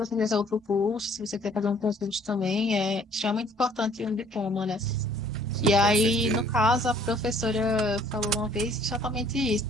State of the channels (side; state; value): both; normal; correlation 0.58